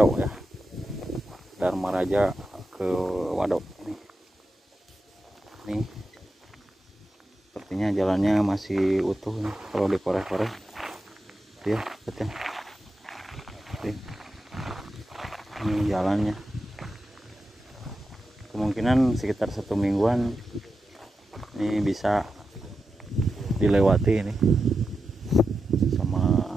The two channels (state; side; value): normal; both; correlation 0.89